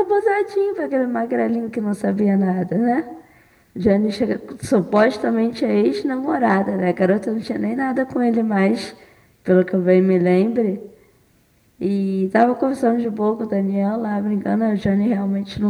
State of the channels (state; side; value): identical; both; correlation 1.00